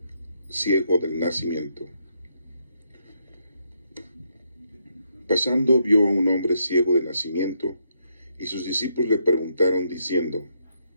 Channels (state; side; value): inverted; both; correlation -0.77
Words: ciego del nacimiento. Pasando vio a un hombre ciego de nacimiento, y sus discípulos le preguntaron diciendo: